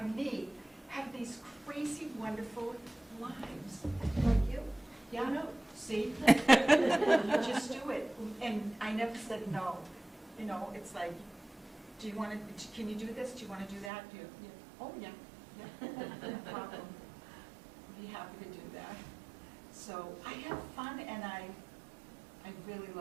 meet have these crazy, wonderful lives. Like you. Yeah, no, see? You just do it. And I never said no. You know, it's like, do you want to, can you do this? Do you want to do that? Do you, yeah. Oh, yeah. Yeah, no problem. I'd be happy to do that. So I have fun, and I really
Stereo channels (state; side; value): drops out; left; at 13.9 s